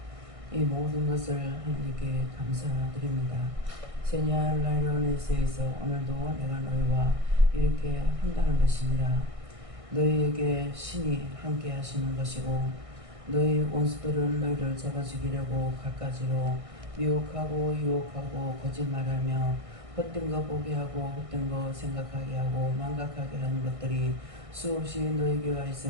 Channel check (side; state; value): left; late; 1.6 ms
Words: 이 모든 것을 하나님께 감사드립니다. 세냐 라이로네스에서 오늘도 내가 너희와 이렇게 한다는 것이니라. 너희에게 신이 함께 하시는 것이고 너희 원수들은 너희를 잡아 죽이려고 갖가지로 미혹하고 유혹하고 거짓말하며 헛된 거 보게 하고 헛된 거 생각하게 하고 망각하게 하는 것들이 수없이 너희에게 와